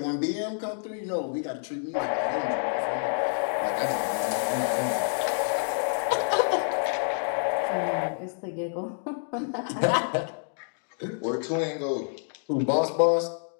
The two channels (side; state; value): right; silent; digital silence